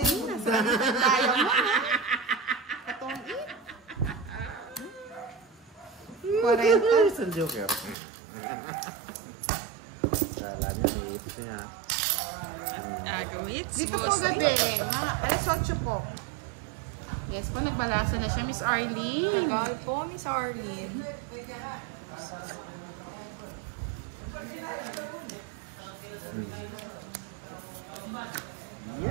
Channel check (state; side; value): drops out; left; at 8.0 s